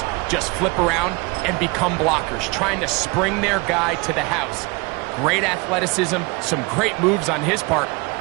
just flip around and become blockers, trying to spring their guy to the house. Great athleticism, some great moves on his part.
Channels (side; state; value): left; quieter; 26.8 dB